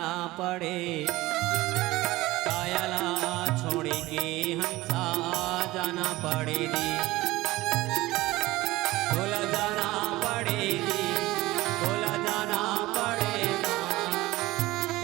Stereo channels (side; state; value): left; quieter; 18.7 dB